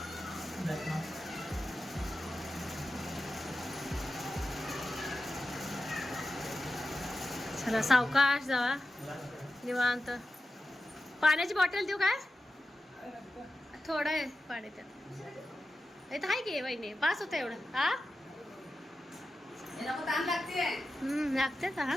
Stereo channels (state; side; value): normal; both; correlation 0.92